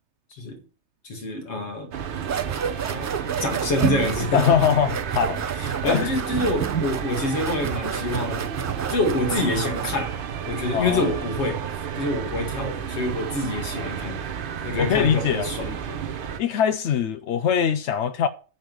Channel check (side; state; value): right; late; 3.3 ms